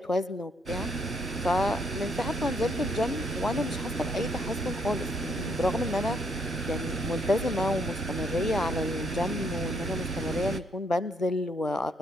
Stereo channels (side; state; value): both; normal; correlation 0.70